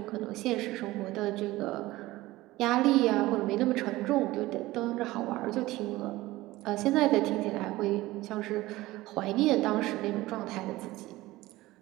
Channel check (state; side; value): quieter; left; 18.2 dB